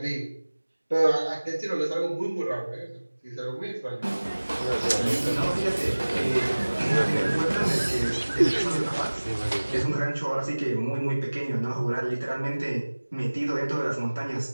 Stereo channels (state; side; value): inverted; both; correlation -1.00